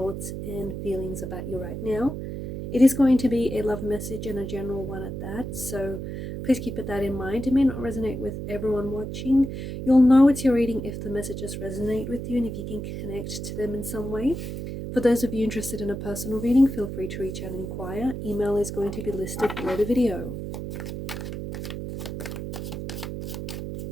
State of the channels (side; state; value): right; noise; hum, 6 dB below the sound